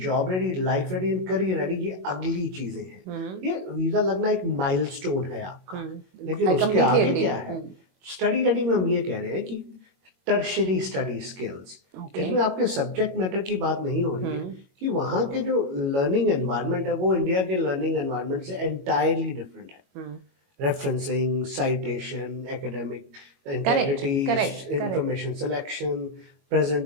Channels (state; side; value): late; left; 22 ms